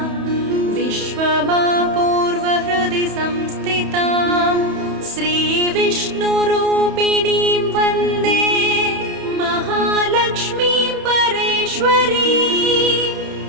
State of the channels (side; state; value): left; late; 31 ms